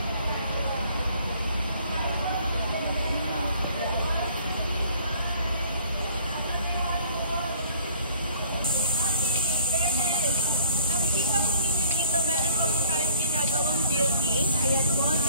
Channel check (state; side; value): inverted; both; correlation -0.55